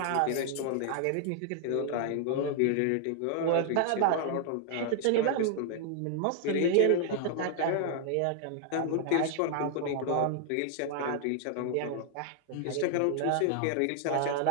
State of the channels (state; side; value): different; both; correlation 0.00